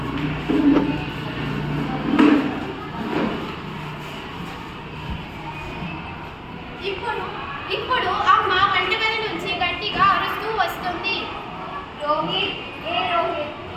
ఇప్పుడు అమ్మ వంటగది నుంచి గట్టిగా అరుస్తూ వస్తుంది. రోహిత్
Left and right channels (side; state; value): both; identical; correlation 1.00